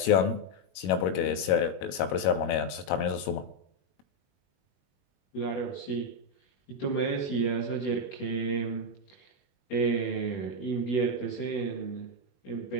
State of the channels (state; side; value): late; right; 22 ms